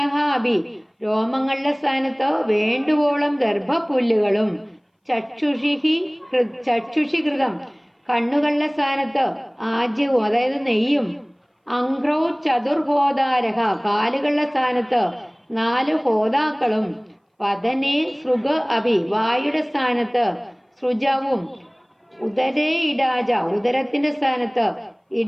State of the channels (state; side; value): identical; both; correlation 1.00